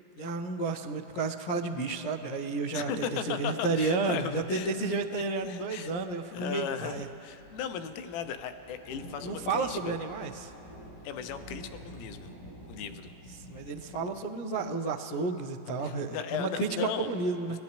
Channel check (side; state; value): right; late; 17 ms